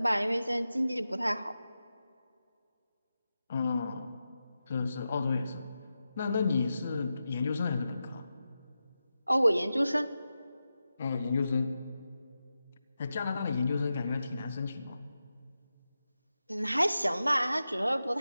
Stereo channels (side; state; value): both; inverted; correlation -0.91